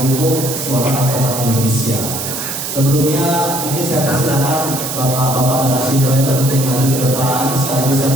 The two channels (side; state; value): right; noise; hiss, 5 dB below the sound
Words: Hukum Suara Advokat Indonesia. Sebelumnya mungkin saya persilakan bapak-bapak narasumber untuk maju ke depan sekaligus saya